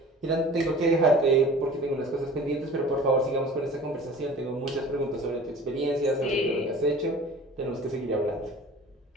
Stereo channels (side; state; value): both; normal; correlation 0.43